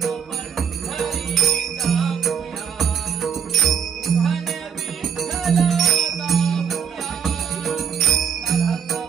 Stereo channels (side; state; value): left; quieter; 7.6 dB